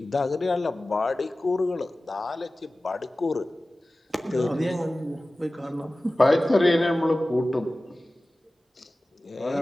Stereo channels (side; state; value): both; normal; correlation 0.97